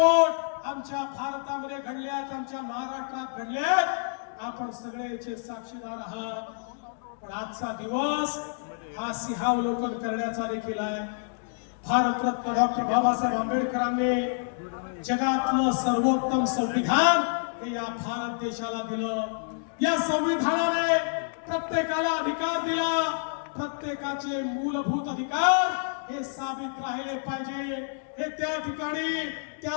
आमच्या भारतामध्ये घडले आहेत, आमच्या महाराष्ट्रात घडले आहेत. आपण सगळेचे साक्षीदार आहात. पण आजचा दिवस हा सिंहावलोकन करण्याचा देखील आहे. भारतरत्न डॉक्टर बाबासाहेब आंबेडकरांनी जगातलं सर्वोत्तम संविधान हे या भारत देशाला दिलं. या संविधानाने प्रत्येकाला अधिकार दिला. प्रत्येकाचे मूलभूत अधिकार हे साबित राहिले पाहिजे. हे त्या ठिकाणी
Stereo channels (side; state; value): right; silent; digital silence